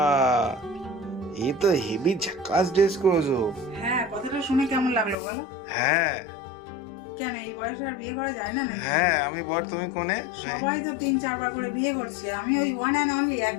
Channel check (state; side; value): drops out; right; at 5.2 s